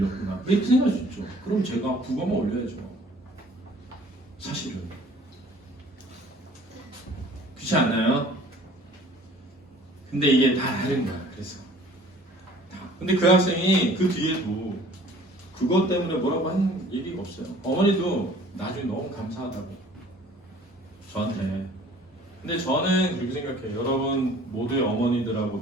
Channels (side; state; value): both; normal; correlation 0.52